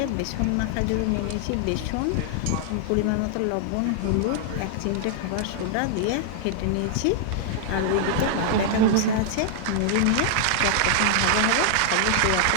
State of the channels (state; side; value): different; both; correlation -0.01